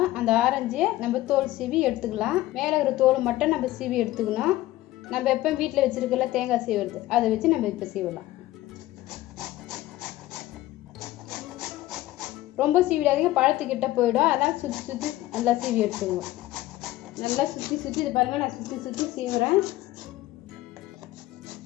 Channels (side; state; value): right; quieter; 16.3 dB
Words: அந்த ஆரஞ்சை நம்ம தோல் சீவி எடுத்துக்கலாம். மேலே இருக்கிற தோல் மட்டும் நம்ம சீவி எடுத்துக்கணும். நம்ம எப்போ வீட்டில் வச்சுருக்கல தேங்காய் சீவுறது அதை வச்சு நம்ம இப்போ சீவலாம். ரொம்ப சீவிடாதீங்க, பழத்துக்கிட்ட போயிடும். அதனால் சுற்றி சுற்றி நல்லா சீவி எடுத்துக்குவோம். நல்லா சுற்றி சுற்றி இது பாருங்கள், நான் சுற்றி சுற்றி சீவுறேன்.